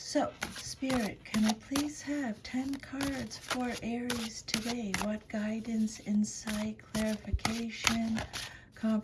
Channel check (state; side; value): identical; both; correlation 1.00